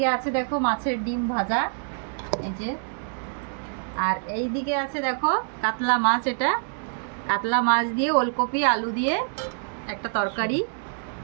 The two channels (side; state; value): left; silent; digital silence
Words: আছে দেখো মাছের ডিম ভাজা, এই যে। আর এই দিকে আছে দেখো কাতলা মাছ, এটা কাতলা মাছ দিয়ে ওলকপি আলু দিয়ে একটা তরকারি।